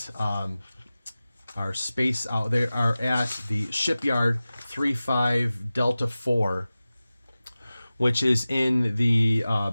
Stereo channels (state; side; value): inverted; both; correlation -0.96